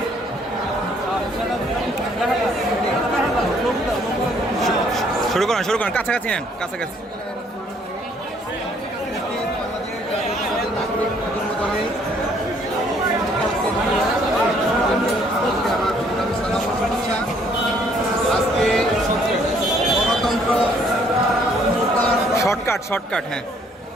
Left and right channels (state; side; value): normal; both; correlation 0.64